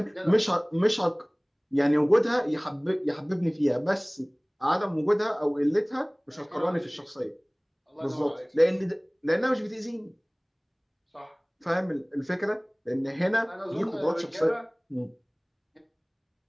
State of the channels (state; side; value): identical; both; correlation 1.00